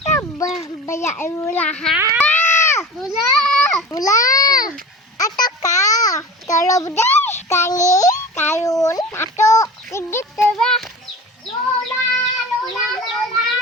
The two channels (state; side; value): normal; both; correlation 0.35